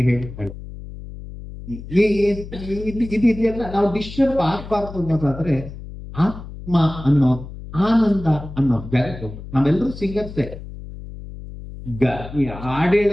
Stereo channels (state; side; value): noise; left; hum, 13 dB below the sound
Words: ಹೇಳ್ತಾಳೆ. ಇದೆಲ್ಲ ನಾವು ಡಿಸ್ಟರ್ಬ್ ಆಗ್ಬಾರ್ದು ಅನ್ನೋದಾದ್ರೆ ಆತ್ಮ ಅನ್ನೋ, ಆನಂದ ಅನ್ನೋ ಜಾಗಕ್ಕೆ ಹೋಗ್ಬೇಕು. ನಾವೆಲ್ಲರೂ ಸಿಂಗರ್ಸೇ. ಈ